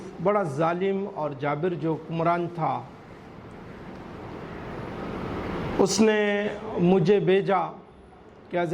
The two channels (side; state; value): both; identical; correlation 1.00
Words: بڑا ظالم اور جابر جو حکمران تھا، اس نے مجھے بھیجا کہ